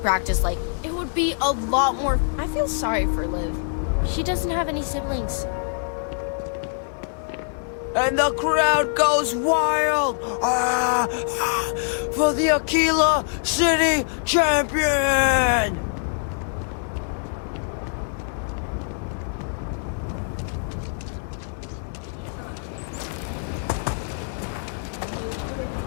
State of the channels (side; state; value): right; silent; digital silence